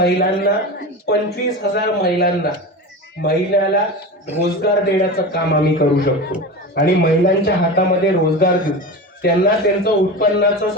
25,000 महिलाला रोजगार देण्याचं काम आम्ही करू शकतो. आणि महिलांच्या हातामध्ये रोजगार देऊ, त्यांना त्यांचं उत्पन्नाचं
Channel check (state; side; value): normal; both; correlation 0.27